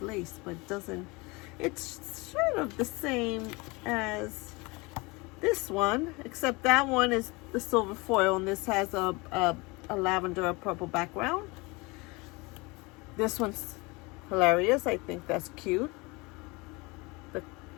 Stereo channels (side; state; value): right; quieter; 25.5 dB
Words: lace, but it doesn't. It's sort of the same as this one, except that one is the silver foil, and this has a lavender or purple background. This one's hilarious. I think that's cute. The